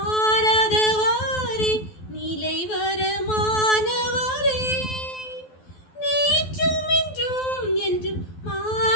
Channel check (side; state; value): right; late; 12 ms